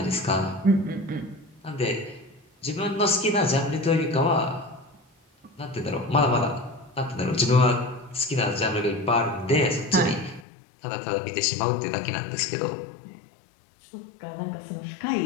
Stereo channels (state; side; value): drops out; right; at 10.5 s